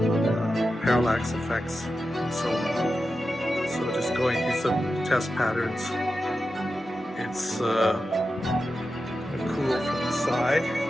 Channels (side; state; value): both; normal; correlation 0.91